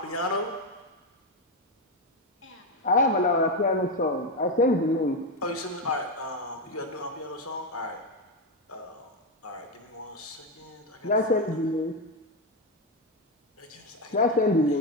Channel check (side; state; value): both; normal; correlation 0.08